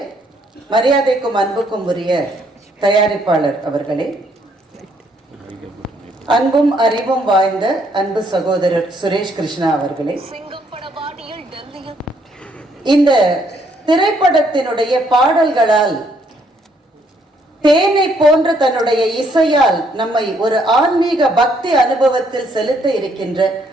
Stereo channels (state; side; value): normal; both; correlation 0.69